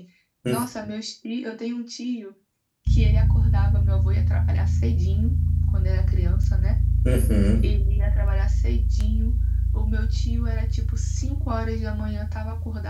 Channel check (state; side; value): identical; both; correlation 1.00